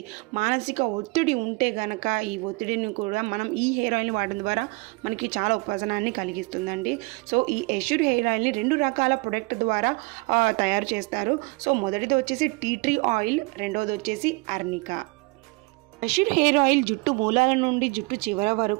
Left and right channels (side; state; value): left; quieter; 27.5 dB